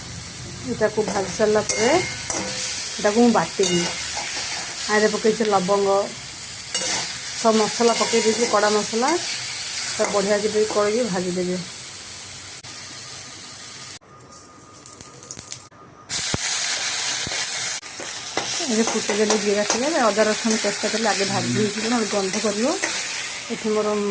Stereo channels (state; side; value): identical; both; correlation 1.00